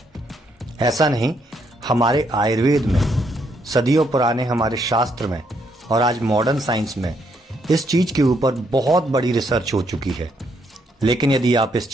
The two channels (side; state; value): both; normal; correlation 0.74